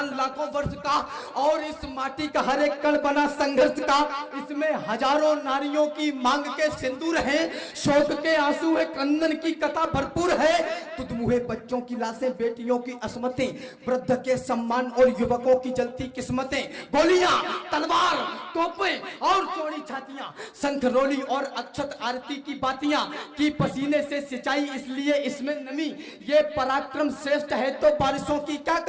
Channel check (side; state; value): both; identical; correlation 1.00